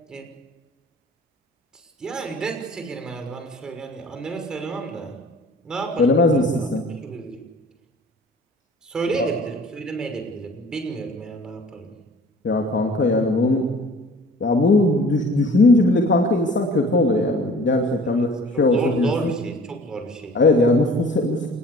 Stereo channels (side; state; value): both; normal; correlation 0.48